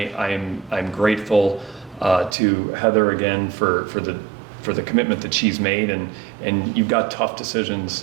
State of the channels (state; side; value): drops out; left; at 2.4 s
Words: grateful to Heather again for the commitment that she's made. And you've got tough